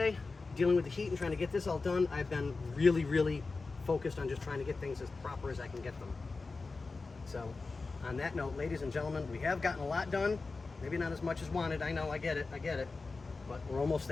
Dealing with the heat and trying to get this all done. I've been really, really focused on just trying to get things as proper as I can get them. So, on that note, ladies and gentlemen, we have gotten a lot done. Maybe not as much as wanted. I know, I get it. But we're almost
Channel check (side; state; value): right; quieter; 3.9 dB